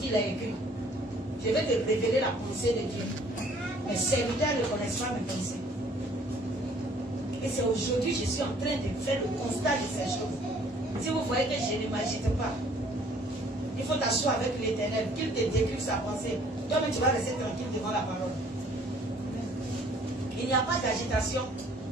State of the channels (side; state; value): both; normal; correlation 0.58